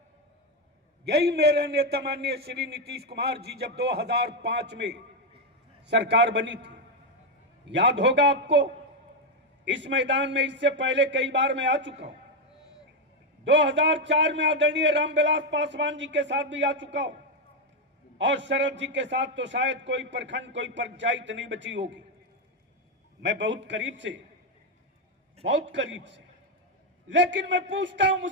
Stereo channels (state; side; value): normal; both; correlation 0.05